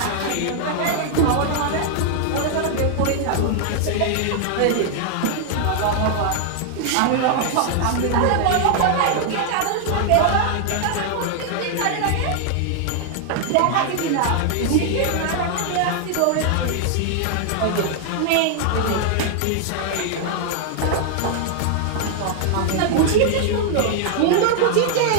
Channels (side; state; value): both; different; correlation 0.00